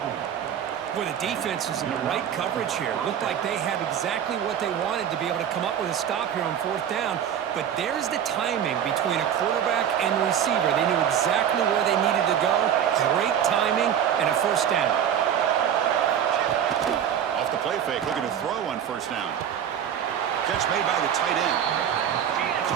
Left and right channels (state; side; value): quieter; left; 9.2 dB